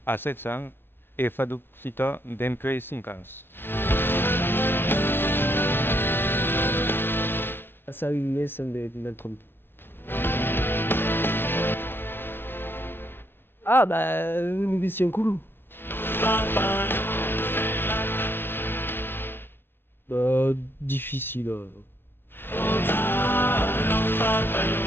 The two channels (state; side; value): late; right; 0.10 ms